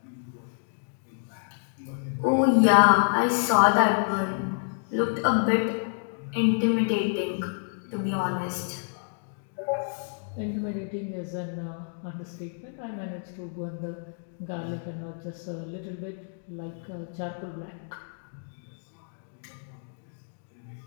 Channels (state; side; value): silent; right; digital silence